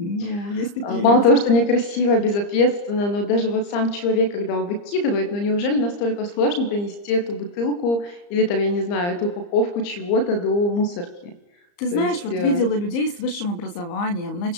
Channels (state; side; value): late; right; 34 ms